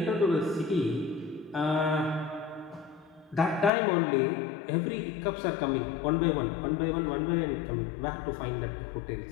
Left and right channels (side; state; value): right; drops out; at 3.7 s